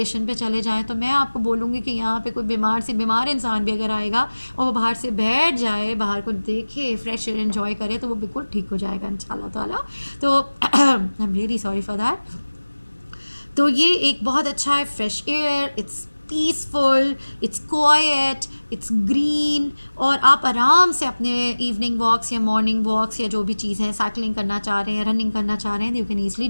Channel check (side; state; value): both; inverted; correlation -1.00